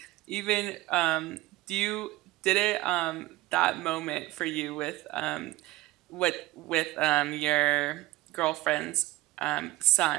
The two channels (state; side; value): quieter; left; 18.4 dB